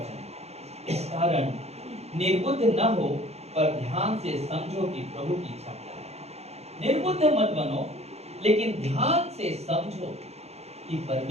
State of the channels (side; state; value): left; late; 0.31 ms